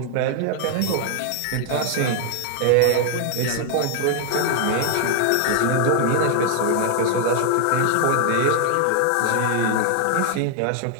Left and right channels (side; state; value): both; different; correlation 0.00